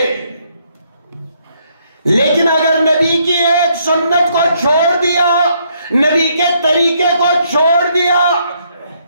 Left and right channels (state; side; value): inverted; both; correlation -0.71